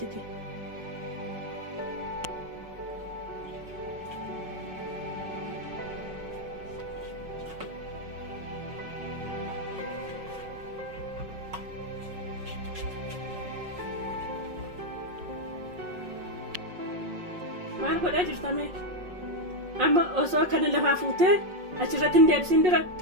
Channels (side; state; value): left; late; 5.5 ms